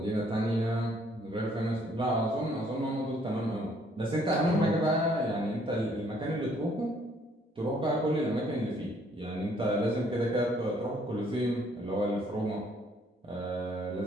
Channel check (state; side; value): normal; both; correlation 0.64